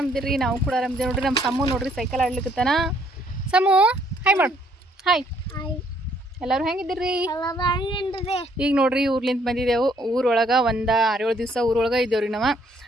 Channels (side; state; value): both; normal; correlation 0.66